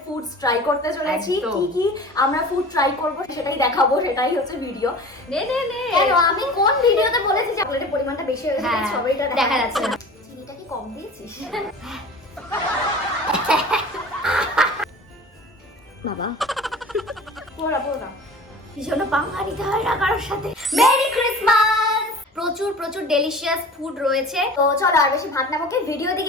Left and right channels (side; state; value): both; normal; correlation 0.40